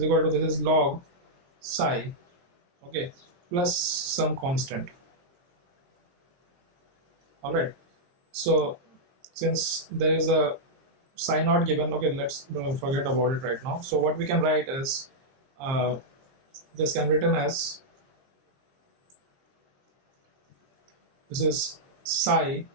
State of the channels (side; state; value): left; late; 23 ms